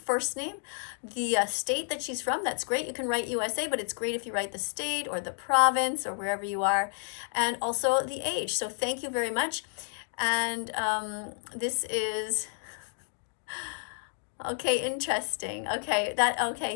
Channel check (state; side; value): silent; right; 58 dB below the other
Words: name, the state that she's from. That's great. You can write USA, but it's great if you write the state or the province or wherever you are, and also the age. So thank you very much. And this is okay, interesting.